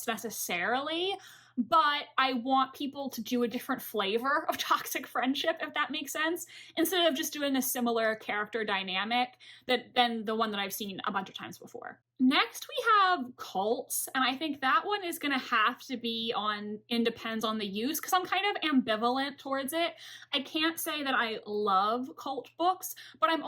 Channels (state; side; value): identical; both; correlation 1.00